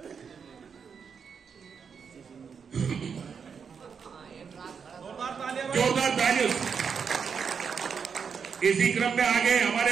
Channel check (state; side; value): quieter; left; 6.4 dB